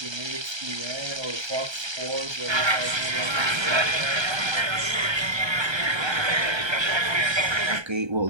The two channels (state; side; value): late; left; 1.3 ms